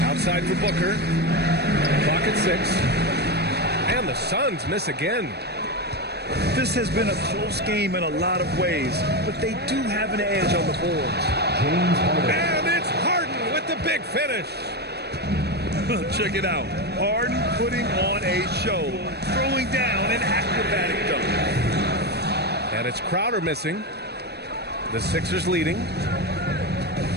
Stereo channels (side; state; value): left; late; 0.48 ms